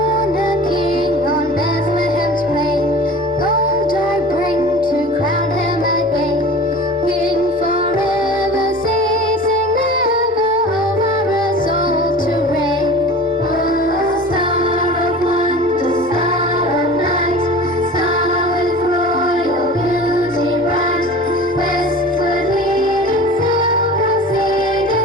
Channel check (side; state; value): both; normal; correlation 0.39